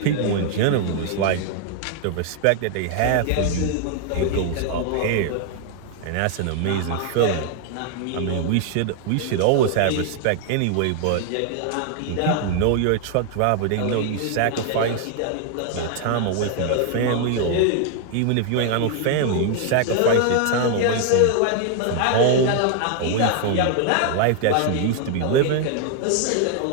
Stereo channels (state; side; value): different; both; correlation 0.00